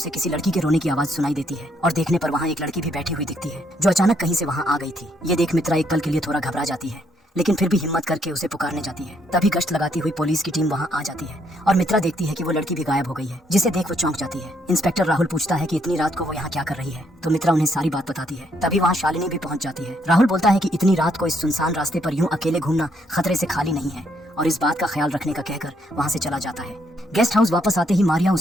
किसी लड़की के रोने की आवाज सुनाई देती है, और देखने पर वहाँ एक लड़की भी बैठी हुई दिखती है जो अचानक कहीं से वहाँ आ गई थी। ये देख मित्रा एक पल के लिए थोड़ा घबरा जाती है, लेकिन फिर भी हिम्मत करके उसे पुकारने जाती है। तभी गश्त लगाती हुई पुलिस की टीम वहाँ आ जाती है, और मित्रा देखती है कि वो लड़की भी गायब हो गई है, जिसे देख वो चौंक जाती है। इंस्पेक्टर राहुल पूछता है कि इतनी रात को वो यहाँ क्या कर रही है, तो मित्रा उन्हें सारी बात बताती है। तभी वहाँ शालिनी भी पहुँच जाती है। राहुल बोलता है कि इतनी रात को इस सुनसान रास्ते पर यूं अकेले घूमना खतरे से खाली नहीं है, और इस बात का ख्याल रखने का कहकर वहाँ से चला जाता है। गेस्ट हाउस वापस आते ही मारिया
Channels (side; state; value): both; normal; correlation 0.72